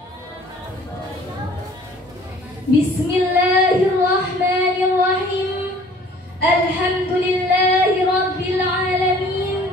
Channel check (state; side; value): normal; both; correlation 0.52